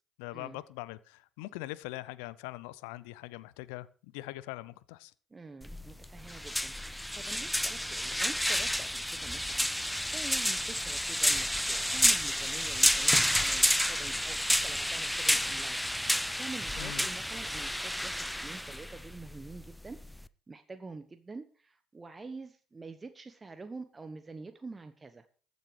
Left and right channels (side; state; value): both; normal; correlation 0.97